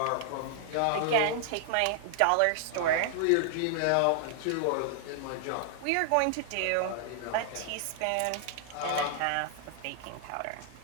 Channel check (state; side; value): different; both; correlation -0.01